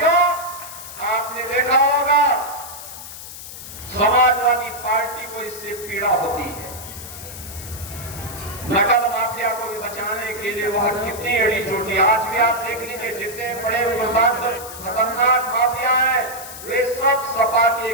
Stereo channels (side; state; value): left; noise; hiss, 12 dB below the sound